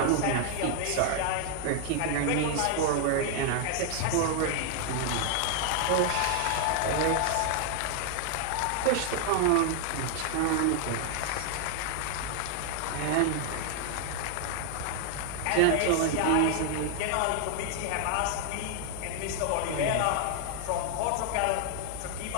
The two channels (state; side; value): different; both; correlation 0.00